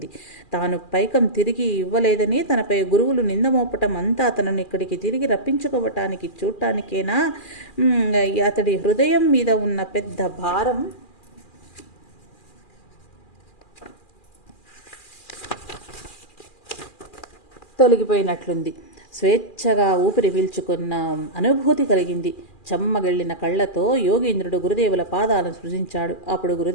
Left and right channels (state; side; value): late; right; 2.4 ms